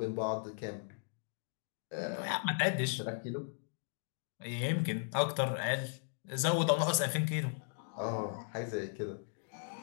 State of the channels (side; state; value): right; silent; digital silence